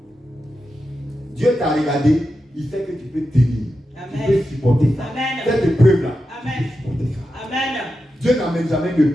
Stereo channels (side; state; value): both; normal; correlation 0.89